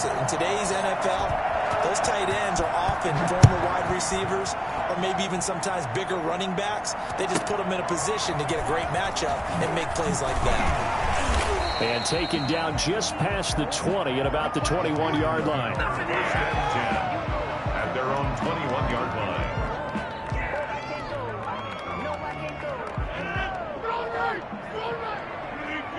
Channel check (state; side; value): identical; both; correlation 1.00